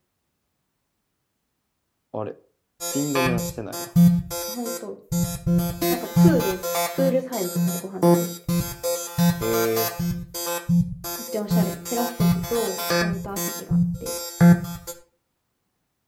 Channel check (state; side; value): identical; both; correlation 1.00